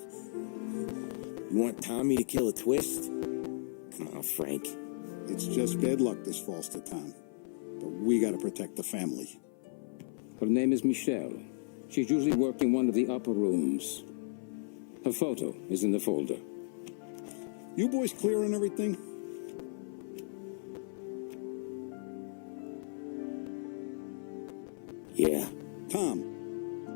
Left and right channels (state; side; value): silent; right; 54 dB below the other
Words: You want Tommy to kill a twist? Come on, Frank. It's just bad luck this falls to Tom. But we gotta protect the family. Her name is Michelle. She's usually working one of the upper rooms. Her photo is in the folder. You boys clear on everything? Yeah. Tom.